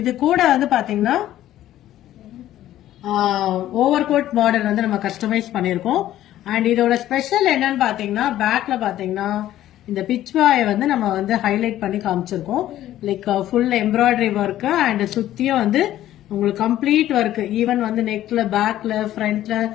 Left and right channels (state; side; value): quieter; right; 13.2 dB